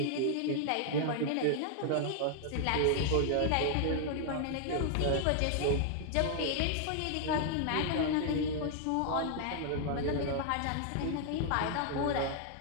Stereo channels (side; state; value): both; different; correlation 0.00